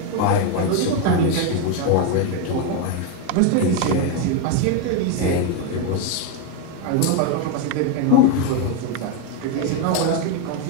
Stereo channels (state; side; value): different; both; correlation 0.02